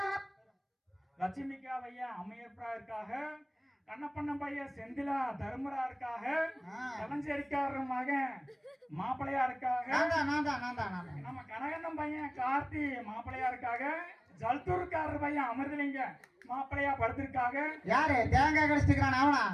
லட்சுமிக்கா வையன் அம்மையப்பரா இருக்காக, கண்ணப்பண்ண பையன் செந்திலா தர்மரா இருக்காக, கலஞ்சேரிக்காரர் மகன் மாப்பிளையா இருக்காக, நம்ம கனகண்ணன் பையன் கார்த்தி மாப்பிளையா இருக்காக, ஜல்தூர்காரர் பையன் அமிர்தலிங்க மாப்பிளையா படுத்திருக்காக. யாரு தேங்காய் கடிச்சிருக்கான் அவனா?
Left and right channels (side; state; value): both; identical; correlation 1.00